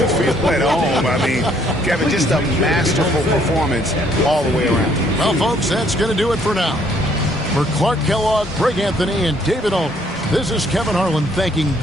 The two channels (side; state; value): both; normal; correlation 0.65